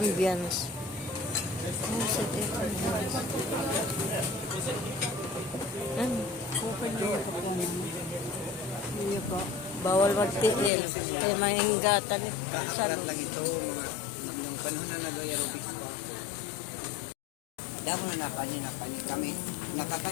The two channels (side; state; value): right; drops out; at 10.7 s